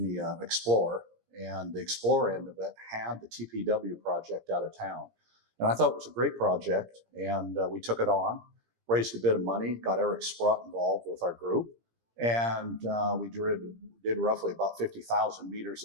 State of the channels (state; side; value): late; left; 17 ms